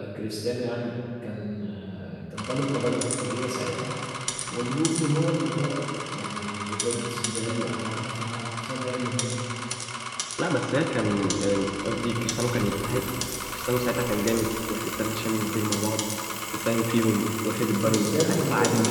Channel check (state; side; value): identical; both; correlation 1.00